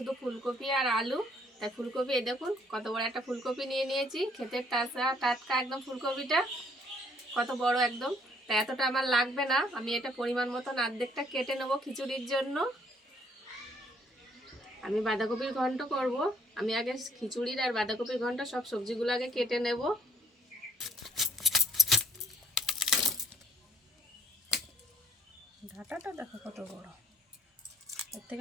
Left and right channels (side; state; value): both; normal; correlation 0.63